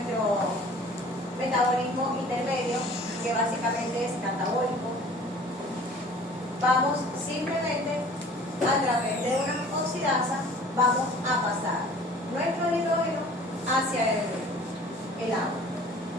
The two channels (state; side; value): normal; both; correlation 0.48